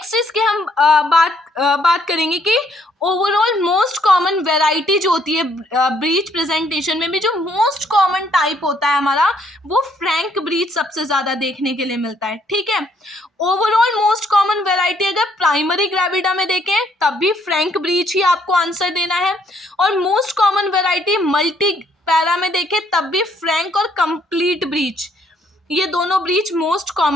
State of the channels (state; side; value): normal; both; correlation 0.68